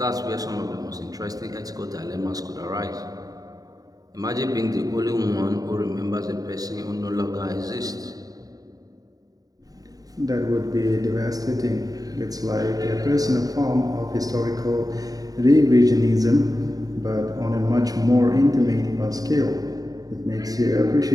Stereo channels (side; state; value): left; late; 0.18 ms